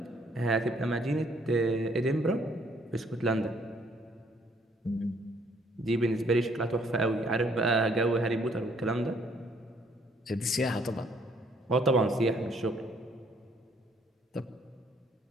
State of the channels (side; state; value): both; normal; correlation 0.65